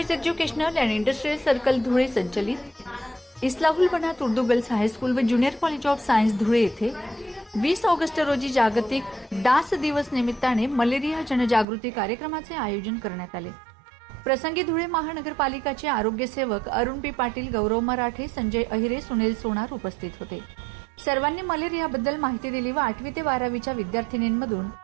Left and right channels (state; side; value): drops out; left; at 11.7 s